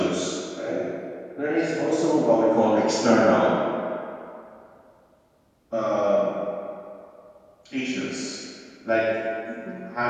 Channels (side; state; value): both; identical; correlation 1.00